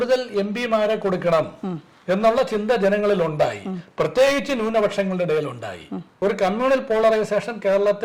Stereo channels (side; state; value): both; identical; correlation 1.00